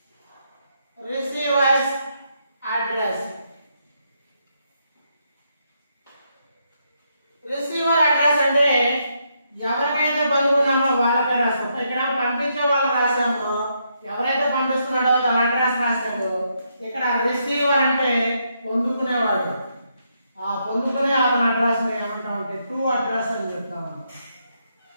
Receiver's address. Receiver address అంటే ఎవరికైతే పంపుకున్నామో వాళ్ళకే రాస్తాం. ఇక్కడ పంపించే వాళ్ళు రాసాము. ఎవరైతే పంపిస్తున్నాడో తన address రాశాడు. ఇక్కడ రిసీవర్ అంటే పొందుకునేవాడు. ఆ పొందుకునే అతని అడ్రస్ ఏమంటాం అంటే టు అడ్రస్ అని చెప్తాము.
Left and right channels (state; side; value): inverted; both; correlation -0.78